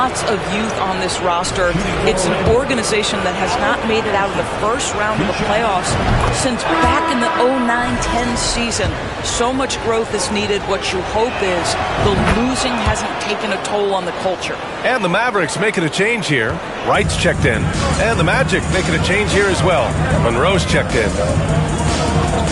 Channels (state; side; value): identical; both; correlation 1.00